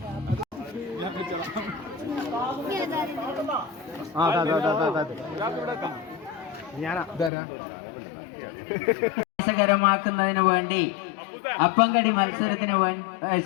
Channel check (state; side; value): drops out; right; at 7.3 s